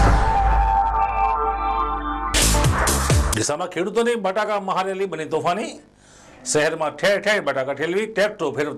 ડીસામાં ખેડૂતોની બટાકા મહારેલી બની તોફાની। શહેરમાં ઠેર ઠેર બટાકા ઠેલવી ટ્રેક્ટરો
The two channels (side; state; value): both; identical; correlation 1.00